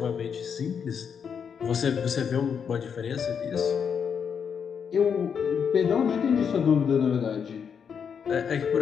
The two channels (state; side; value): quieter; right; 7.0 dB